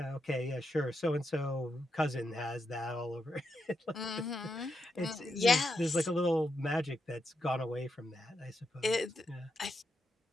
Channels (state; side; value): normal; both; correlation 0.84